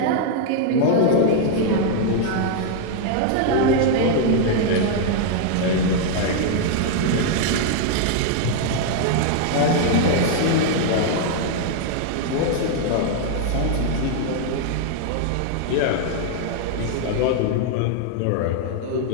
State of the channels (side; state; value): both; different; correlation -0.01